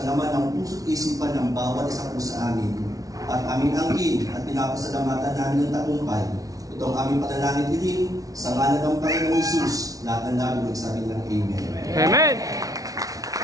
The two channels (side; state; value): left; late; 0.18 ms